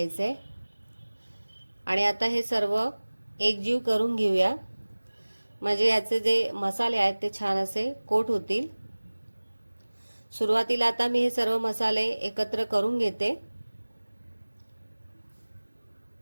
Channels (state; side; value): inverted; both; correlation -1.00